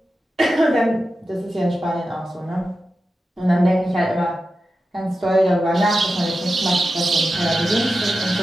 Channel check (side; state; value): both; normal; correlation 0.92